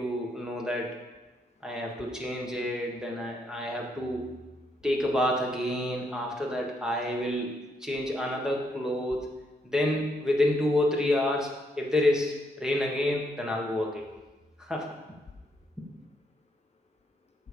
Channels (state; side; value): normal; both; correlation 0.75